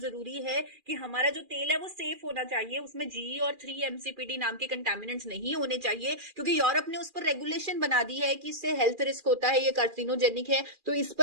है कि हमारा जो तेल है वो सेफ होना चाहिए, उसमें जी और 3-MCPD नाम के कंटामिनेंट्स नहीं होने चाहिए, क्योंकि यूरोप ने उस पर रेगुलेशन बना दी है कि इससे हेल्थ रिस्क होता है, ये कार्सिनोजेनिक है, तो इस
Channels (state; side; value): late; left; 2.4 ms